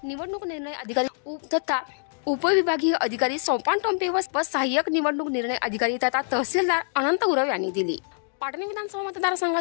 निवडणूक निर्णय अधिकारी तथा उपविभागीय अधिकारी सोपान टोंपे व सहाय्यक निवडणूक निर्णय अधिकारी तथा तहसीलदार अनंत गुरव यांनी दिली। पाटण विधानसभा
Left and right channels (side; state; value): right; silent; digital silence